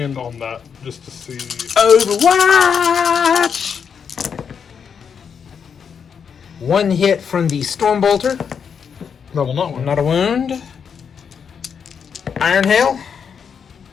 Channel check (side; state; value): right; quieter; 6.9 dB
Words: on that, just to see. Overwatch! 1 hit from the Stormbolter. That will not win. Not a wound. Iron Hail.